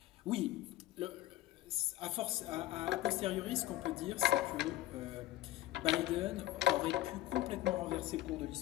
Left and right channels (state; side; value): quieter; right; 15.1 dB